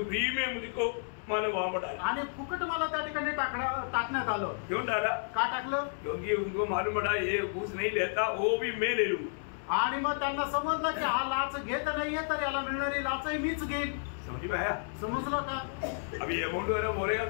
में मुझको मानो वहां पड़ा, आणि फुकट मला त्या ठिकाणी टाकण्यात आलं। क्यों डाला? का टाकलं? क्योंकि उनको मालूम पड़ा ये घूस नहीं लेता, वो भी मैं ले लूं। आणि मग त्यांना समजलं की हा लाच घेत नाहीये तर याला मिळणारी लाचही मीच घेईन। समझ में आया? समजलं का? अभी अमाउंट वगैरह बोलेगा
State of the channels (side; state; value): right; silent; digital silence